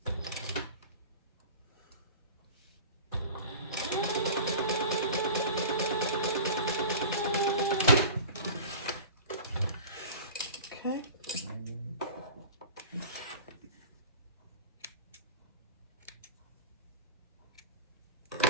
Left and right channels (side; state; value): both; inverted; correlation -0.37